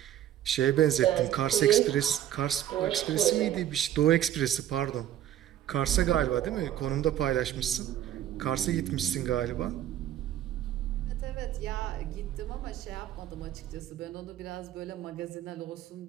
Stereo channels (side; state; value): left; quieter; 11.7 dB